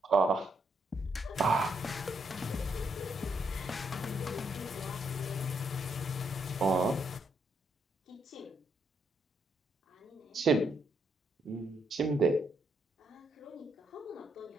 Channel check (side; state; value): both; normal; correlation 0.76